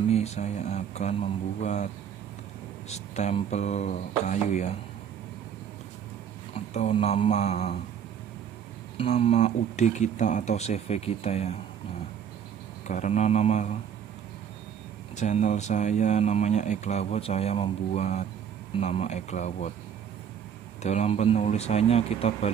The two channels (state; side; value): quieter; left; 8.3 dB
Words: saya akan membuat stempel kayu ya, atau nama UD kita atau CV kita ya. Nah, karena nama channel saya namanya Eklawot, saya membuat nama Eklawot. Dalam penulisannya kita